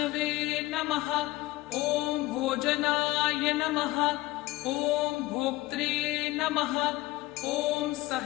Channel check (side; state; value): right; quieter; 18.6 dB